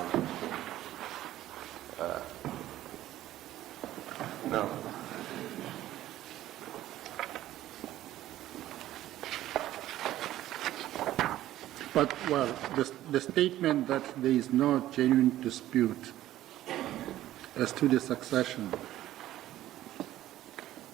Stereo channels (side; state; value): left; quieter; 13.9 dB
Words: on. Now, but, well, the statement that there is no genuine dispute as to the succession,